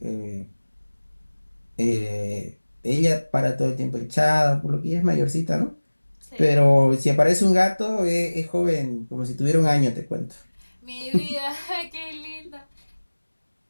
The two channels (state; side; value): inverted; both; correlation -1.00